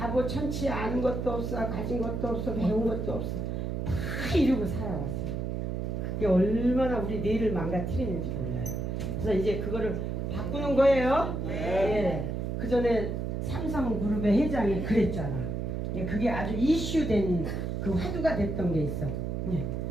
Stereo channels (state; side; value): noise; right; hum, 2 dB below the sound